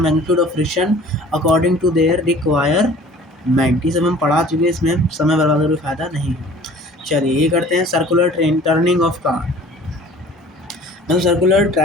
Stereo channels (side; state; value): both; normal; correlation 0.48